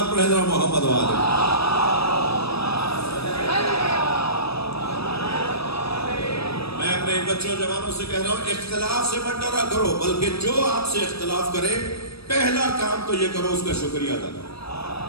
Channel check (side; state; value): right; late; 0.78 ms